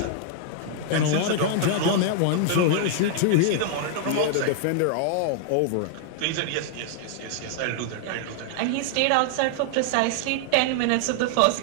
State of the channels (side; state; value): both; different; correlation -0.01